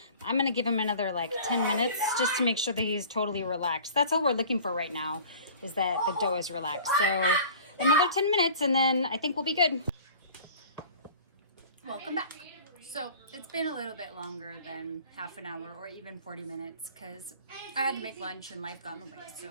I'm gonna give him another like 10 minutes just to make sure that he's totally relaxed. That's all we're looking for right now, is that the dough is relaxed. So another 10 minutes and then I think we'll be good. Welcome back. So it's been a little bit longer than half an hour or even 40 minutes because I had to make lunch and life got in the way.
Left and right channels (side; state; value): both; inverted; correlation -0.45